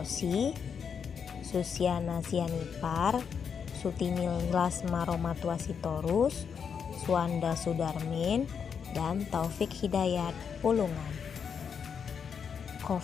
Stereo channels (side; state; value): right; quieter; 6.8 dB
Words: Susiana Sianipar, Sutinil Lasma Romatwasitorus, Suwanda Sudarmin, dan Taufik Hidayat Pulungan.